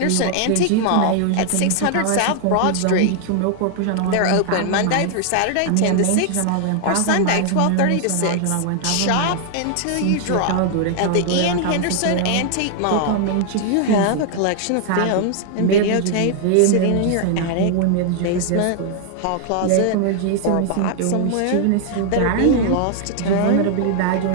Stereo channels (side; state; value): both; different; correlation 0.00